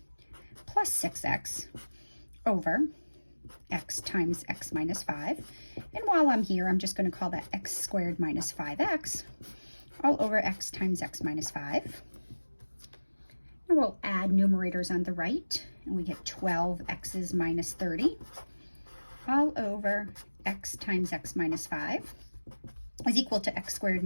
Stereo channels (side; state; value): both; inverted; correlation -1.00